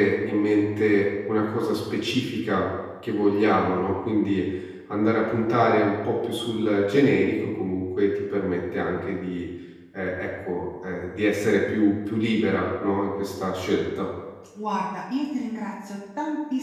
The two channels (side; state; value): both; identical; correlation 1.00